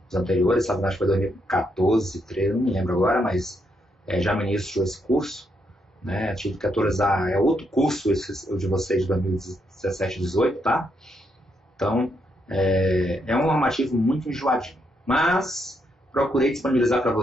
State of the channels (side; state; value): both; normal; correlation 0.78